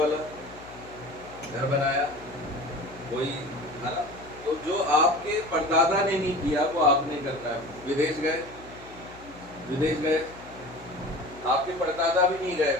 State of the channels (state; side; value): noise; left; hum, 20 dB below the sound